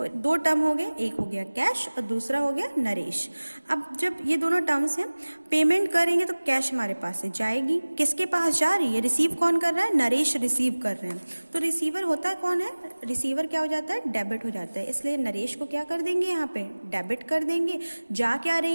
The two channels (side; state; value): both; inverted; correlation -1.00